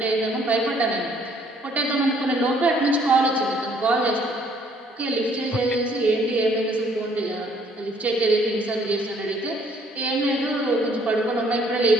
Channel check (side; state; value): both; normal; correlation 0.63